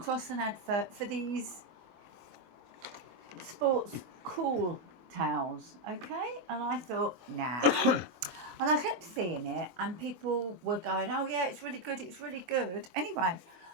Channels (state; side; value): late; left; 24 ms